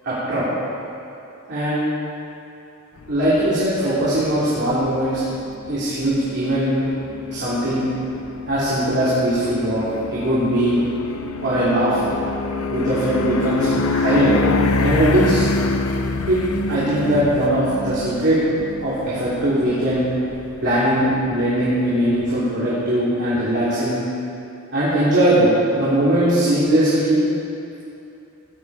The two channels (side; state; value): both; normal; correlation 0.39